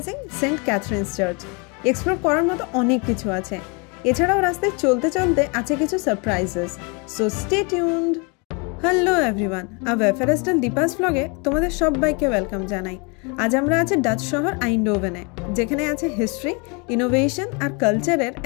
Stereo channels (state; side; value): quieter; right; 32.1 dB